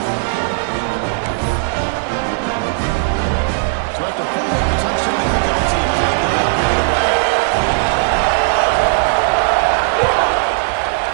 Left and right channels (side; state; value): left; silent; digital silence